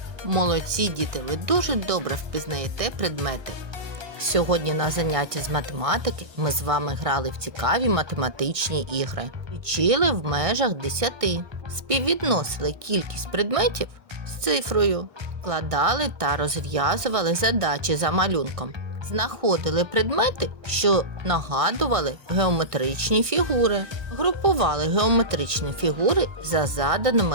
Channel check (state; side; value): late; left; 1.5 ms